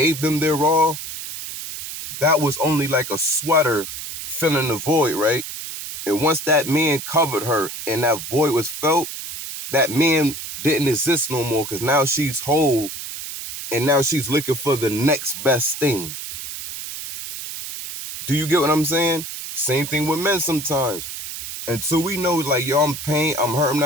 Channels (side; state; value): right; noise; hiss, 8 dB below the sound